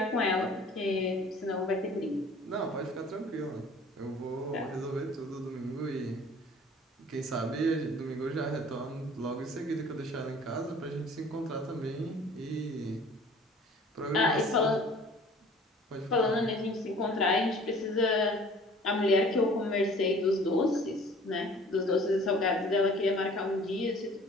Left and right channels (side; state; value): both; normal; correlation 0.49